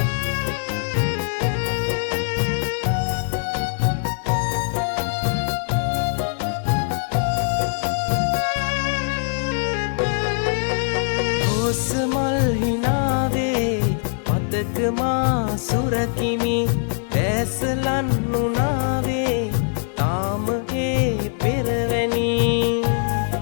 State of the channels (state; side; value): silent; right; digital silence